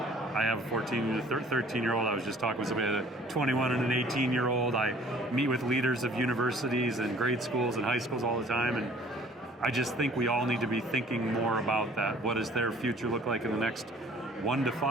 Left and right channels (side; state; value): both; normal; correlation 0.53